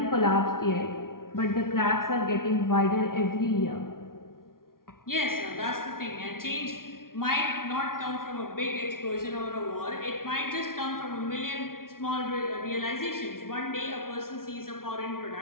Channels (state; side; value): late; right; 0.92 ms